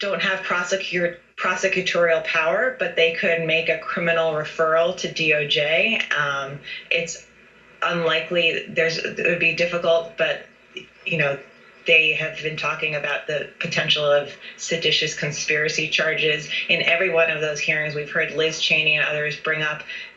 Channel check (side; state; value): both; identical; correlation 1.00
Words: have prosecutorial power, but they could make a criminal referral to DOJ. It's unlikely. It would be difficult, but They have been talking about the potential of seditious conspiracy charges. In every one of those hearings, we've heard Liz Cheney and others bring up